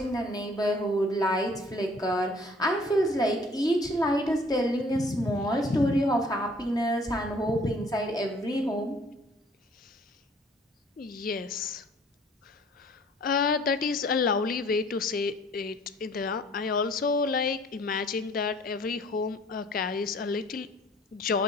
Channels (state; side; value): normal; both; correlation 0.55